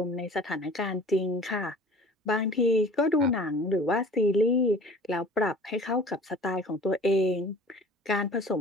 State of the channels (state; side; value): normal; both; correlation 0.46